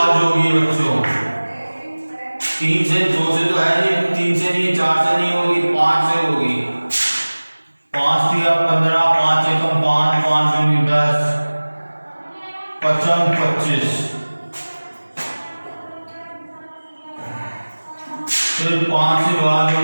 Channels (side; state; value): both; inverted; correlation -1.00